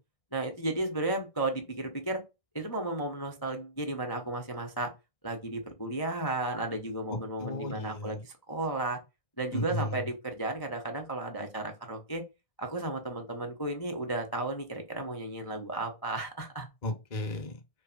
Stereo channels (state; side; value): late; right; 1.6 ms